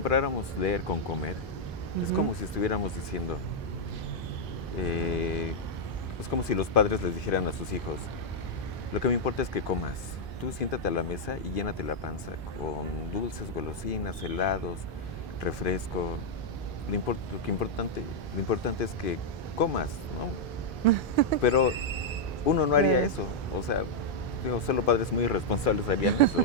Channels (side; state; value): both; normal; correlation -0.04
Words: leer con comer, es como si estuviéramos diciendo, es como si los padres les dijeran a sus hijos, lo que me importa es que comas, tú siéntate a la mesa y llénate la panza con dulces, golosinas, helados, refresco, lo importante es que comas, ¿no? Pero uno no haría eso, o sea, digo, solo padres muy irresponsables harían